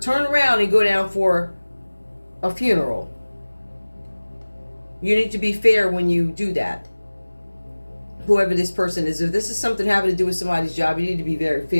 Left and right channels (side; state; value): both; inverted; correlation -1.00